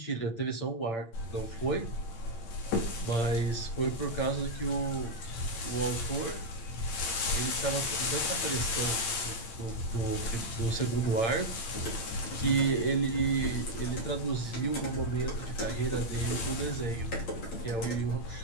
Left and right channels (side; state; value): right; late; 8.8 ms